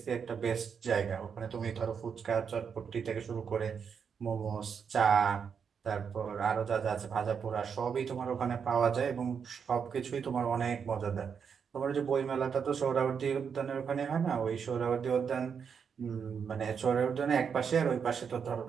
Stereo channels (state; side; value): quieter; left; 6.7 dB